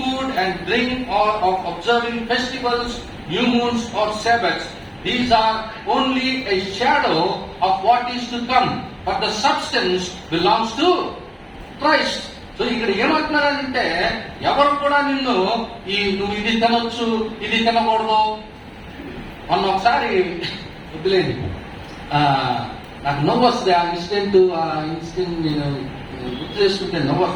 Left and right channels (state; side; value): identical; both; correlation 1.00